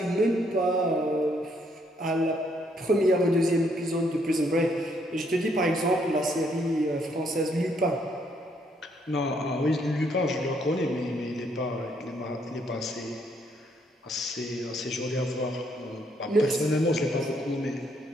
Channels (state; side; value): normal; both; correlation 0.71